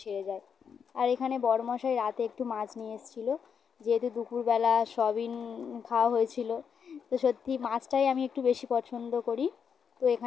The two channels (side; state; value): right; quieter; 6.8 dB